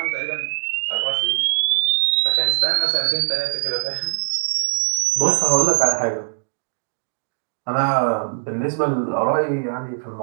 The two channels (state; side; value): silent; left; digital silence